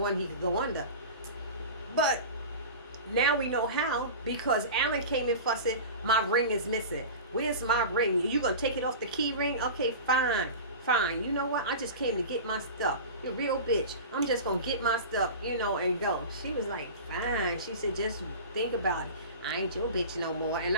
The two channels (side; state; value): both; inverted; correlation -0.32